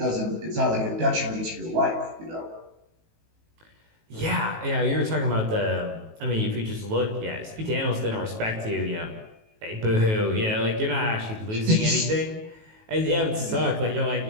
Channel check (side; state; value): left; late; 18 ms